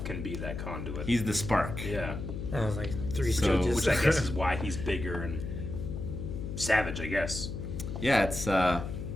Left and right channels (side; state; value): left; noise; hum, 6 dB below the sound